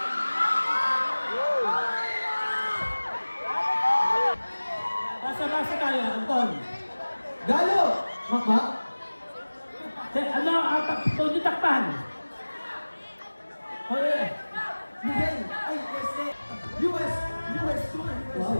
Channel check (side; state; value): both; inverted; correlation -1.00